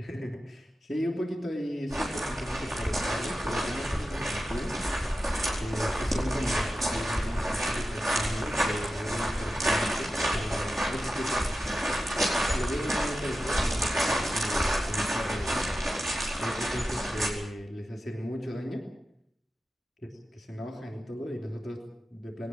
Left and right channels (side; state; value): both; normal; correlation 0.92